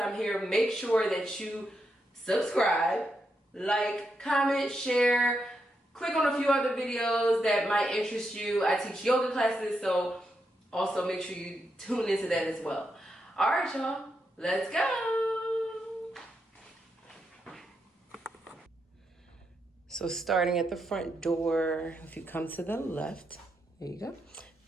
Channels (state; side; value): normal; both; correlation 0.83